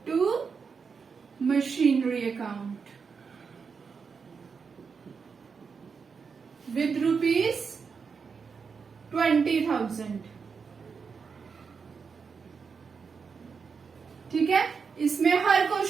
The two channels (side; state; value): left; quieter; 5.6 dB